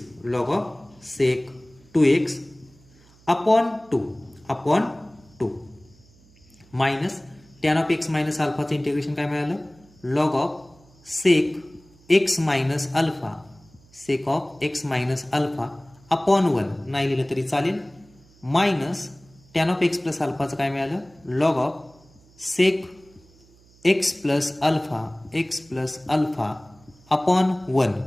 upon 2 minus tan of x minus अल्फाचं इंटिग्रेशन काय मिळालं log of sec x minus alpha upon 1 नाही लिहिलं तरी चालेल minus tan of x plus अल्फाचं काय मिळालं log of sec x plus alpha upon 1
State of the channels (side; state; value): right; noise; hum, 28 dB below the sound